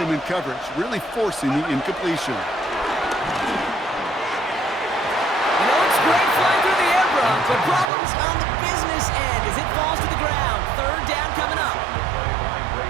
him in coverage, really forcing the incompletion. You know, it's great flying through the air, Brock, but problems on the business end as it falls to the ground. Third down coming up.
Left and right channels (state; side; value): drops out; left; at 7.9 s